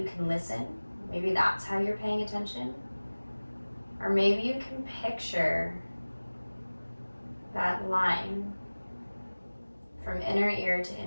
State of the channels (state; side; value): inverted; both; correlation -1.00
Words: can listen. Maybe that's how you're paying attention. Or maybe you can picture that line from inner ear to